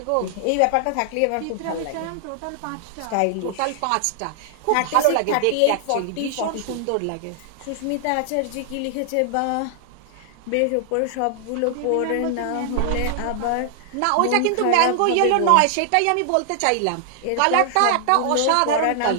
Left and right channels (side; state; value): both; different; correlation 0.00